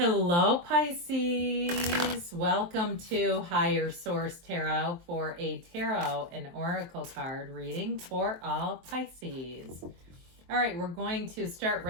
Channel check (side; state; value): left; late; 23 ms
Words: Pisces. Welcome to Higher Source Tarot for a tarot and oracle card reading for all Pisces. All right, we're going to start